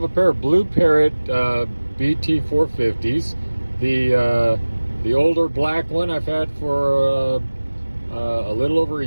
a pair of Blue Parrot BT-450s. The older black one I've had for a little over a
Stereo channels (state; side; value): inverted; both; correlation -1.00